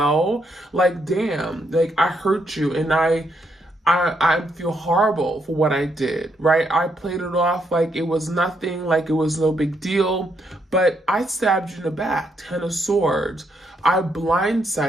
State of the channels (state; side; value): normal; both; correlation 0.76